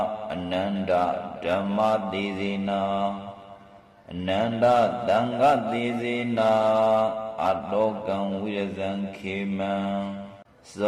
အနန္တဓမ္မသေစေနာအနန္တသံဃသေစေနာအတောကံဝိရဇံခေမံဇ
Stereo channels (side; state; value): both; identical; correlation 1.00